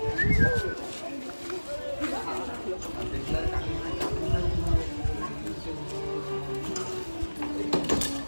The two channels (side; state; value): both; inverted; correlation -1.00